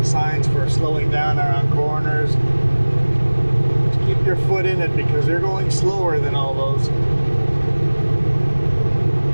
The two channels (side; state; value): both; inverted; correlation -1.00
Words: signs for slowing down around corners. Just keep your foot in it because you're going slower than all those.